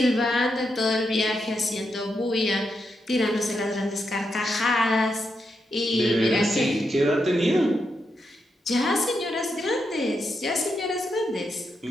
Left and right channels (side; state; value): both; normal; correlation 0.83